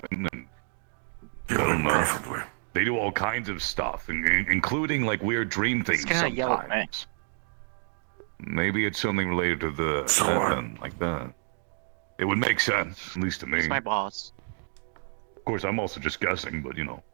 And I don't know. They do all kinds of stuff, including like weird dream things gonna yell at me. sometimes. Maybe it's something related to the like that. It would make sense, at least to me. It's my boss. Of course, I'm also just guessing, but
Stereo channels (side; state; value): left; silent; 55 dB below the other